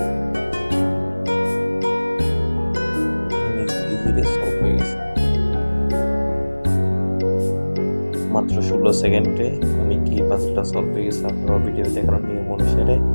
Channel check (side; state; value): both; inverted; correlation -1.00